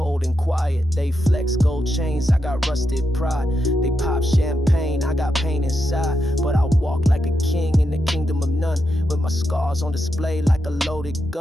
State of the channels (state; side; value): normal; both; correlation 0.85